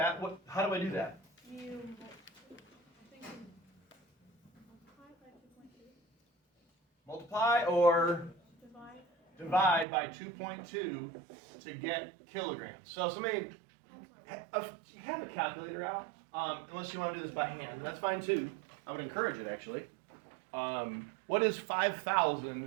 How do I do that? You, I think you multiply by 2.2. Multiply or Divide. divide by 2.2 to get kilograms. So somebody have a calculator out, unless you want to do this by hand. That's fine too. I would encourage it actually. What is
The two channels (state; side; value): drops out; left; at 9.9 s